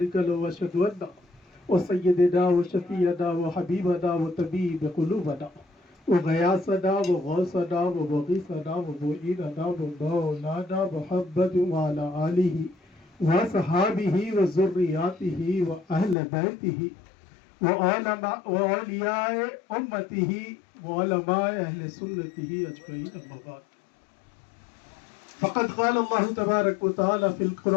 له وأشهد أن وسيدنا وشفيعنا وحبيبنا وطبيب قلوبنا وغياثنا وغوثنا ومغيثنا ومعيننا ومولانا محمد وعلى آله وصحابه وذرياته وأهل بيته وأولياء أمته وعلماء أهل سنته أجمعين أما بعد فقد قال الله تبارك وتعالى في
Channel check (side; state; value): right; drops out; at 16.2 s